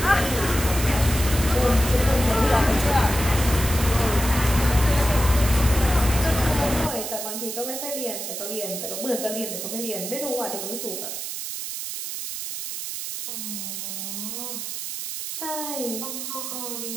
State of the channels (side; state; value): right; noise; hiss, 6 dB below the sound